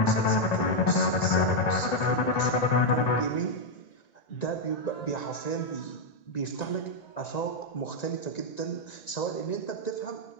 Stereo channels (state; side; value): late; right; 1.9 ms